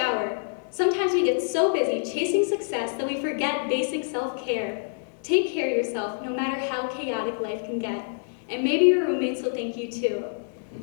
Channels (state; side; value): silent; right; digital silence